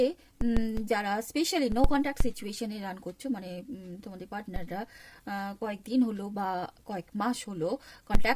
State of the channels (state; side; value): identical; both; correlation 1.00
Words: যারা স্পেশালি নো কন্ট্যাক্ট সিচুয়েশনে রান করছো, মানে তোমাদের পার্টনাররা কয়েকদিন হলো বা কয়েক মাস হলো